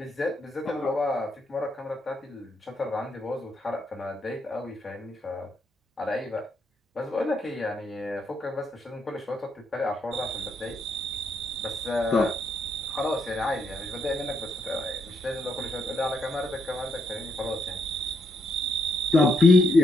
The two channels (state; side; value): normal; both; correlation 0.77